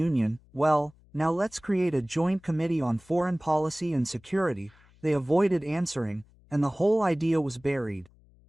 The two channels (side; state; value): left; noise; hum, 29 dB below the sound